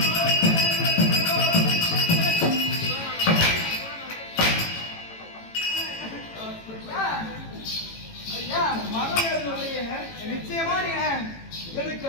நிச்சயமா நீங்க எனக்கு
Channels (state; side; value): late; right; 18 ms